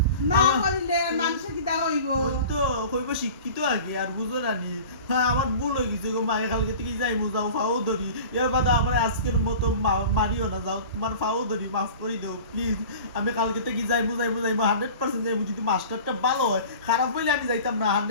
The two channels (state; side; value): inverted; both; correlation -0.40